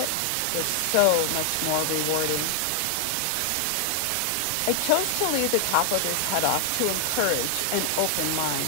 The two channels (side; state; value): both; different; correlation 0.00